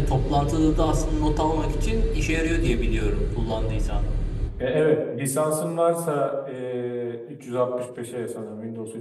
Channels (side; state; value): both; identical; correlation 1.00